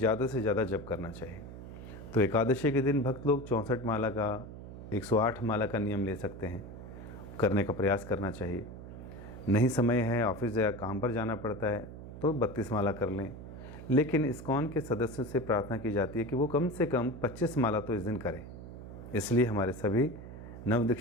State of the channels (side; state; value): right; noise; hum, 12 dB below the sound